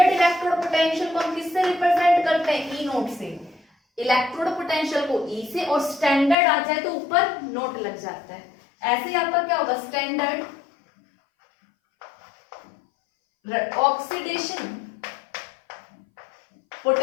इलेक्ट्रोड पोटेंशियल को हम किससे रिप्रेजेंट करते हैं ई नोट से, इलेक्ट्रोड पोटेंशियल को ई से, और स्टैंडर्ड आ जाए तो ऊपर नोट लग जाता है। ऐसे ही आपका क्या होगा स्टैंडर्ड ऑक्सीडेशन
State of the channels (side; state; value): right; drops out; at 6.4 s